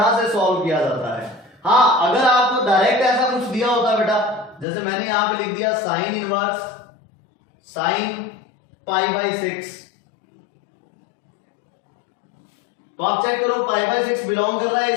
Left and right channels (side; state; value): right; drops out; at 4.7 s